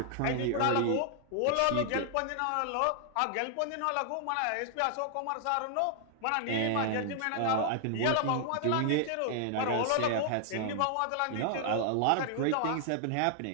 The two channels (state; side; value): different; both; correlation 0.00